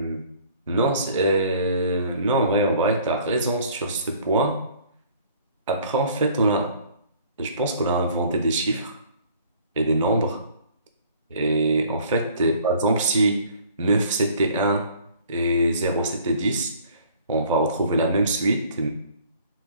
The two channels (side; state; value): both; inverted; correlation -0.54